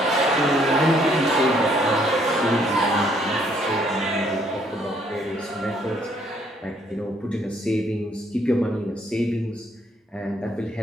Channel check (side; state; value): both; normal; correlation 0.67